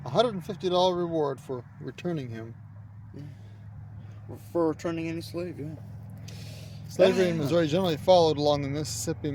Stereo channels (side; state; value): both; identical; correlation 1.00